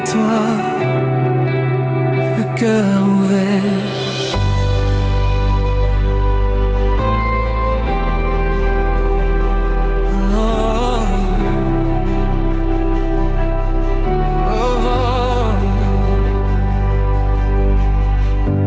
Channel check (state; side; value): identical; both; correlation 1.00